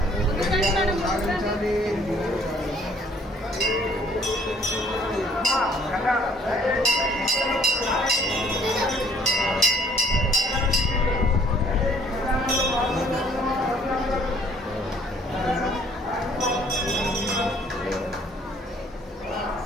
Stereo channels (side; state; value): both; normal; correlation 0.60